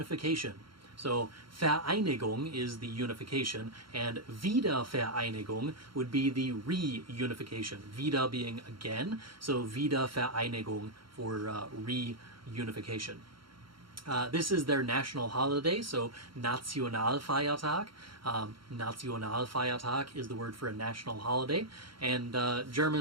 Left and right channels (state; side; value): late; left; 0.73 ms